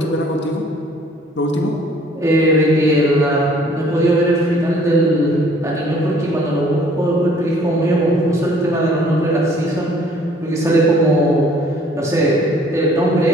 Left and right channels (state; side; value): normal; both; correlation 0.57